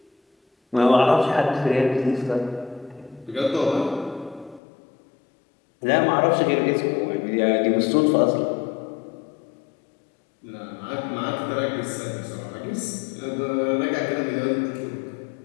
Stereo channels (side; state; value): right; drops out; at 4.6 s